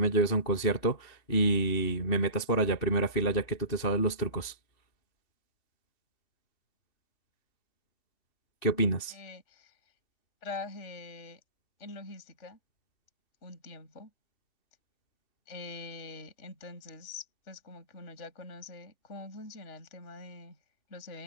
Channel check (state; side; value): late; right; 2.7 ms